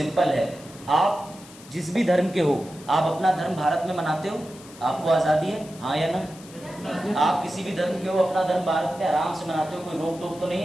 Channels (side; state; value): left; noise; hiss, 20 dB below the sound